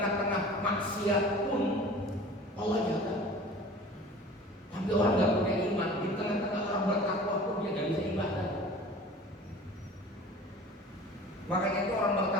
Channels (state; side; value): normal; both; correlation 0.42